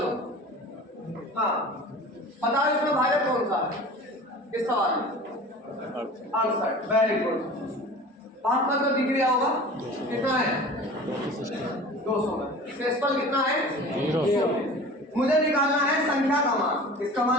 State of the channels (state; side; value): normal; both; correlation 0.39